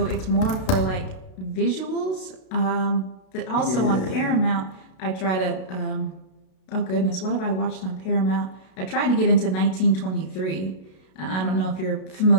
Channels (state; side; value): late; right; 32 ms